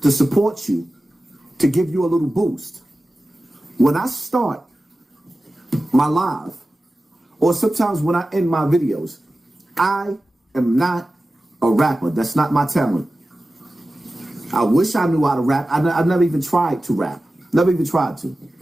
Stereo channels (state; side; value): normal; both; correlation 0.95